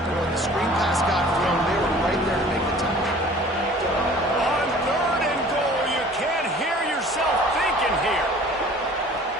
and when the screen pass got thrown, they were right there to make the tackle. On third and goal, you can't hear yourself thinking here.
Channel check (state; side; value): normal; both; correlation 0.48